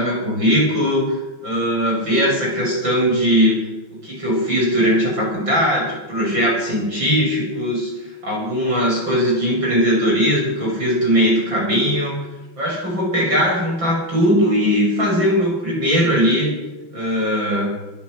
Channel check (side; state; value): left; late; 5.8 ms